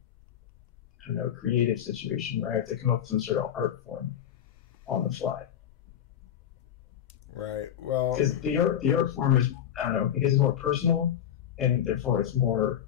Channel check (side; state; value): right; quieter; 9.9 dB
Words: I don't know, creative situation where I have to come up with some sort of art form on the fly. Right. Well, because the art form is, I don't know, because it's more personal, and therefore it's more